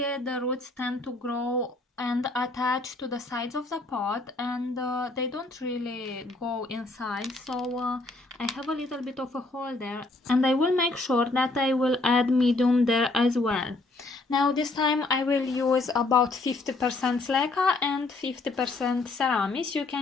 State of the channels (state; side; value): quieter; right; 3.1 dB